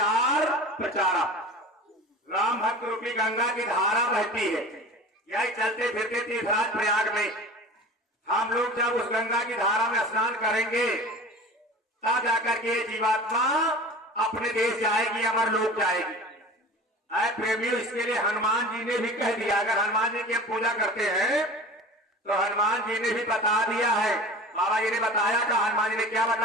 प्रचारा। राम भक्त रूपी गंगा की धारा बहती है, यही चलते फिरते तीर्थराज प्रयाग में। हम लोग जब उस गंगा की धारा में स्नान करेंगे, तब जाकर के जीवात्मा अपने देश जाएगी, अमर लोक जाएगी। प्रेमियों, इसके लिए हनुमान जी ने भी कह दिया। अगर हनुमान जी की हम पूजा करते हैं तो हनुमान जी ने भी बता दिया है। बाबा जी ने बताया था, हनुमान जी ने क्या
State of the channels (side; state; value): both; normal; correlation 0.37